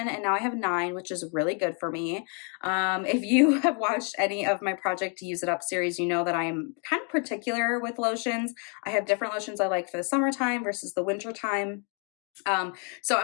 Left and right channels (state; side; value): quieter; right; 38.8 dB